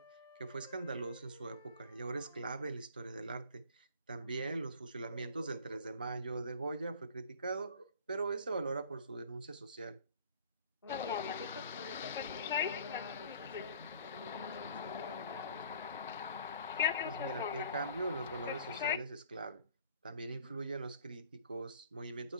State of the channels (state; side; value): inverted; both; correlation -0.50